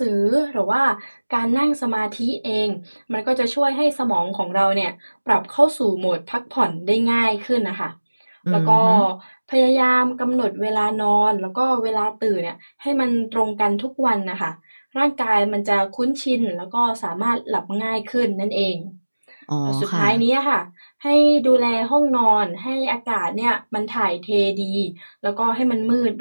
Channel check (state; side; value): inverted; both; correlation -1.00